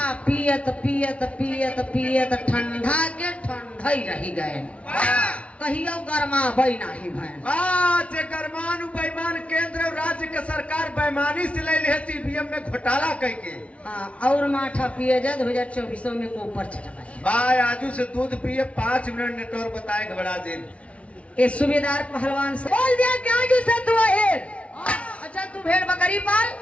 पियत पियत पियत पियत ठंडा के ठंडा ही रही गए, कहियो गरमा बई नहीं भैन। जे गरमान बेईमान केंद्र और राज्य के सरकार बेईमानी से ले ले सीबीएम में घोटाला करके। हाँ, और माठा पिए जा 2024 में को ऊपर चढ़ाए। भाई आजू से दूध पिए 5 मिनट नेटवर्क बताए घबरा दे। ये सूबेदार पहलवान से बोल दिया कि आजू से तू है। अच्छा तू भेड़ बकरी पाल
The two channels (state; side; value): late; right; 0.063 ms